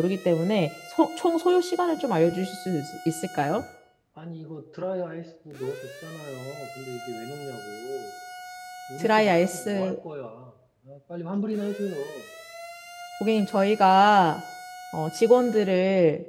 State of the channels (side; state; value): both; identical; correlation 1.00